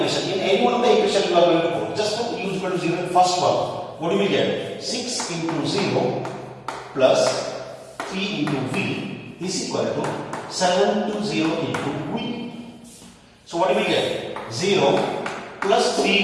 In any one of the equation you are going to put. Just put u is equal to 0 in first one. What do we get? 6 into 0 plus 3 into v is equal to 7 to 0 into v. So what do we get? 0 plus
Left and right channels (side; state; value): both; identical; correlation 1.00